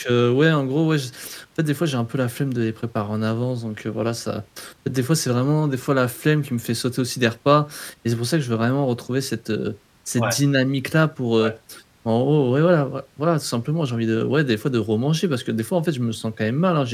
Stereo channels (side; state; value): both; identical; correlation 1.00